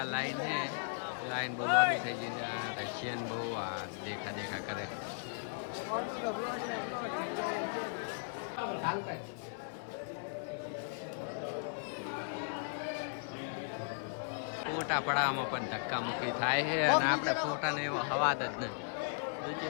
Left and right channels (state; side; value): silent; right; 53 dB below the other